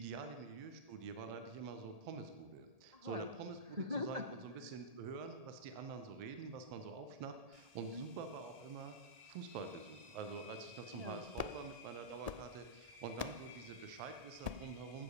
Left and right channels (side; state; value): left; late; 1.7 ms